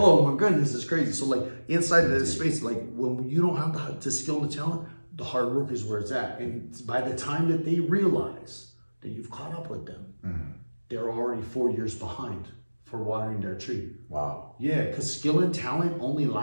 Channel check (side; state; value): both; inverted; correlation -1.00